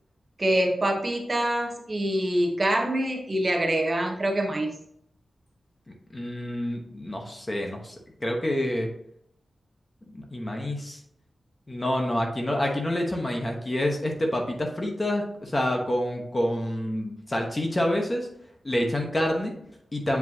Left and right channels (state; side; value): normal; both; correlation 0.93